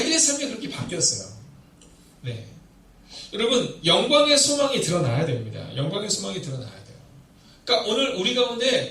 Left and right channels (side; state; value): both; identical; correlation 1.00